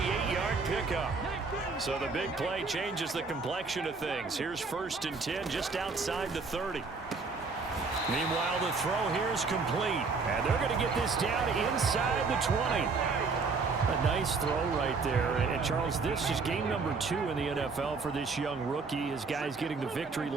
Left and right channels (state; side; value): quieter; left; 4.4 dB